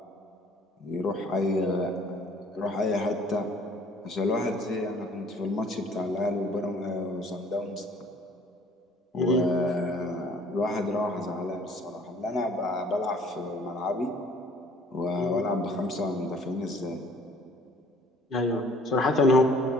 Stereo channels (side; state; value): both; normal; correlation 0.56